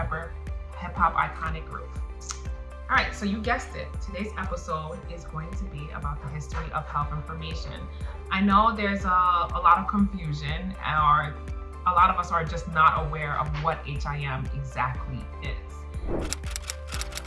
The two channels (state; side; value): identical; both; correlation 1.00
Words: hip hop iconic group. All right, so you guessed it. Today's episode is going to be about the history of health information. I know there's a lot of confusion, or a lot of us are just not aware of what HIM exactly is.